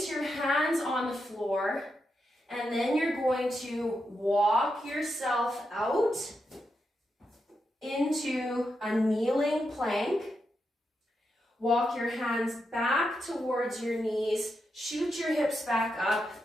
your hands on the floor, and then you're going to walk yourself out into a kneeling plank. Walk your hands back towards your knees, shoot your hips back up,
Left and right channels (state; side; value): normal; both; correlation 0.85